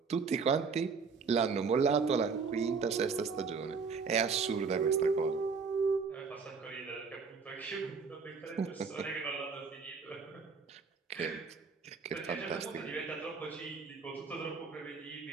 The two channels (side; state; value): left; quieter; 5.2 dB